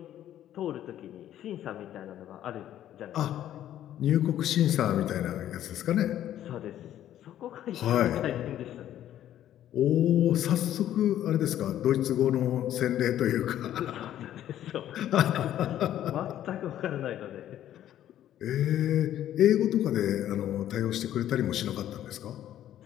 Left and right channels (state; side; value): quieter; right; 11.8 dB